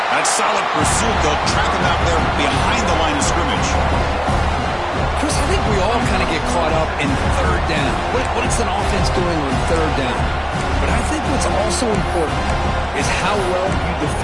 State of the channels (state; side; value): identical; both; correlation 1.00